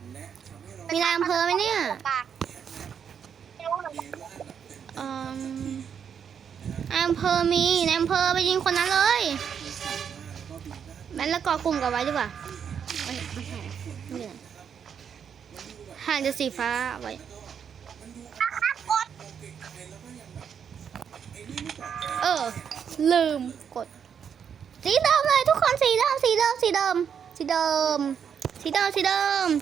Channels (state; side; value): quieter; left; 7.6 dB